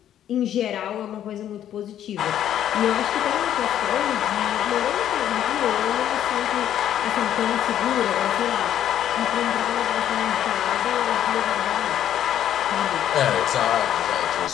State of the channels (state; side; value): quieter; right; 10.8 dB